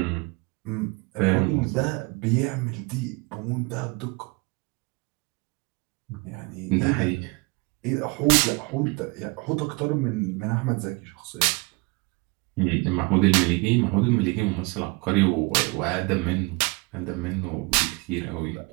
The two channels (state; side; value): quieter; left; 27.1 dB